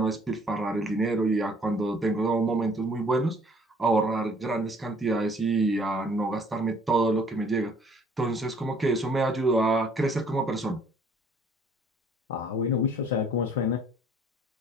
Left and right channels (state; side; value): normal; both; correlation 0.58